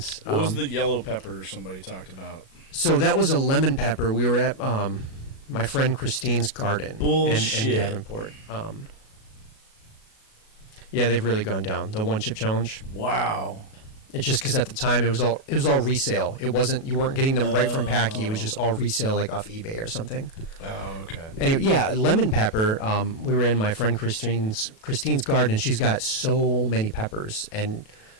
what was the yellow pepper somebody talked about? So that was a lemon pepper. We were at my friend Christine's garden in Davenport. Yeah, they've really gone down. The one chip challenge. Wow. It's just because at the time it was all resale. You weren't getting them right from Packy. It was just all resale, like off eBay or something. Oh, okay. Anyway, yeah, lemon pepper. We were in my friend Christine's garden. She's got so many peppers, and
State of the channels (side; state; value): right; late; 37 ms